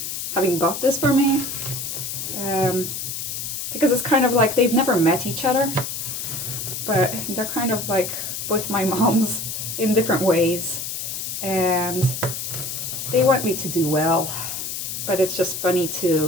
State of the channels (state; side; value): noise; left; hiss, 5 dB below the sound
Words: having bought this for me. Because it's kind of like they've never met each other, but they're kind of like both my moms in different ways, and they want me to do well. But it's just funny